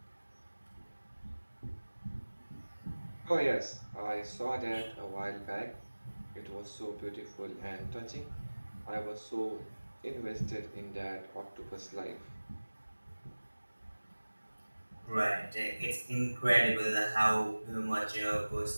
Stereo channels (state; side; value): inverted; both; correlation -1.00